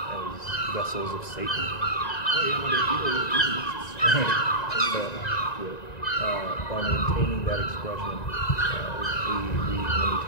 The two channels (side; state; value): right; late; 1.9 ms